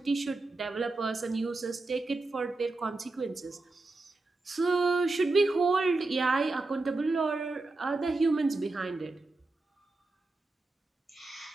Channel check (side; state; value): left; quieter; 3.3 dB